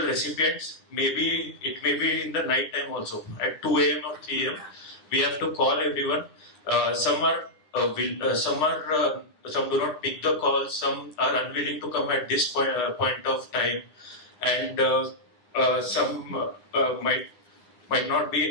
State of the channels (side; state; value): right; late; 10 ms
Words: recipients. Maybe it may be in the night time also, at 2 a.m. or 3 a.m. We have to call everyone. Some do not pick the call, some are unwilling to come at this point of time, and some might not